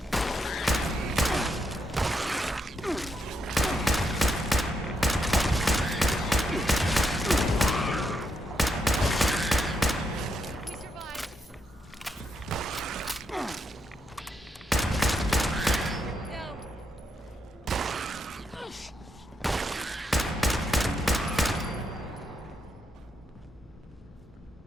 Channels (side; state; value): both; normal; correlation 0.81